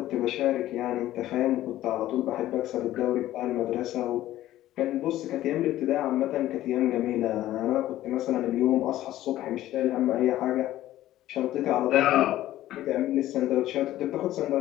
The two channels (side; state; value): right; quieter; 14.2 dB